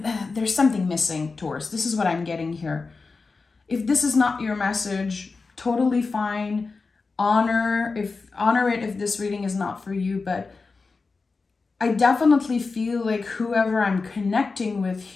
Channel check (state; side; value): quieter; right; 4.2 dB